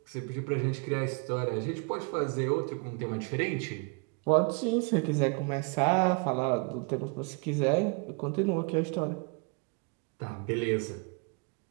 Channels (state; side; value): quieter; left; 33.2 dB